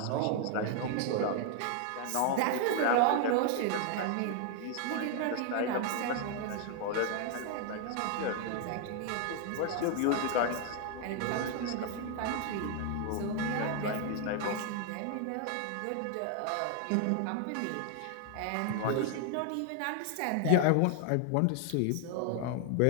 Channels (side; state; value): both; different; correlation 0.00